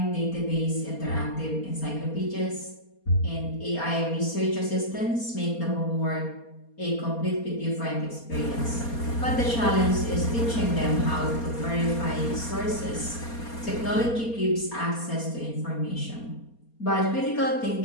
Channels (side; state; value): right; late; 4.3 ms